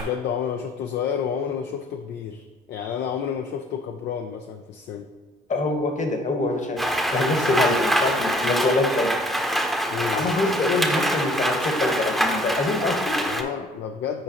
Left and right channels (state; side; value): normal; both; correlation 0.58